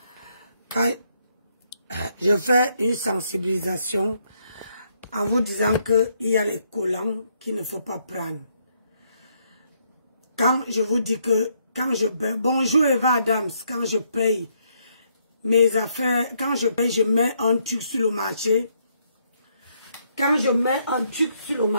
Quand je fais une sensibilisation en vous disant qu'il y a les collants qu'il ne faut pas prendre. Quand je vous dis que quand je paye, bonjour Eva Adams, quand je paye mes affaires, quand je paye, je mets un truc sur le marché. Quand je mets un truc sur le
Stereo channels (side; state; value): both; inverted; correlation -0.74